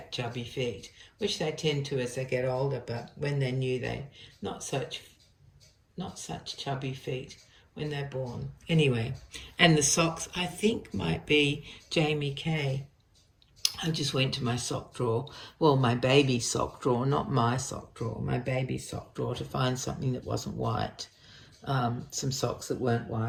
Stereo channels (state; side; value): identical; both; correlation 1.00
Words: chubby feet, which they tend to as they get older. But when they're new, they're not such chubby feet when they're born. Anyway, and the socks I think might be Jamie Kay. I just went to my sock drawer, well, my baby sock drawer, not my sock drawer, my baby sock drawer, to find something that wasn't white, some socks that weren't